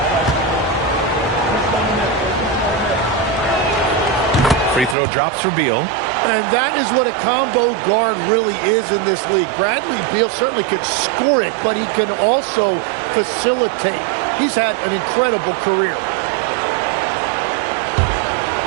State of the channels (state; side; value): drops out; left; at 5.0 s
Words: Free throw drops for Beal. And that is what a combo guard really is in this league. Bradley Beal certainly can score it, but he can also facilitate. He's had an incredible career.